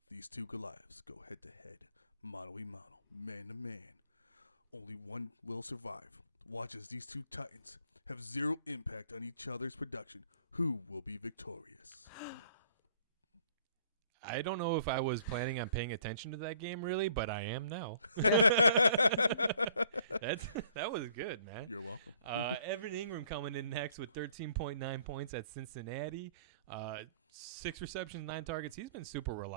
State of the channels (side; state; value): both; inverted; correlation -0.58